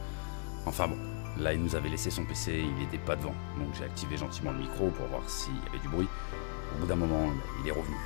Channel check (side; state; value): right; silent; 54 dB below the other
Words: Enfin bon, là il nous avait laissé son PC, il n'était pas devant. Donc j'ai activé gentiment le micro pour voir s'il y avait du bruit. Au bout d'un moment, il est revenu.